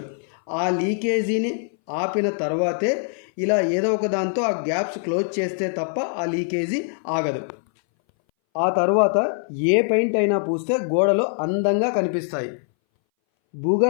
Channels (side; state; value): right; silent; 61 dB below the other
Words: ఆ లీకేజీని ఆపిన తర్వాతే ఇలా ఏదో ఒక దాంతో ఆ గ్యాప్స్ క్లోజ్ చేస్తే తప్ప ఆ లీకేజీ ఆగదు. ఆ తర్వాత ఏ పెయింట్ అయినా పూస్తే గోడలు అందంగా కనిపిస్తాయి.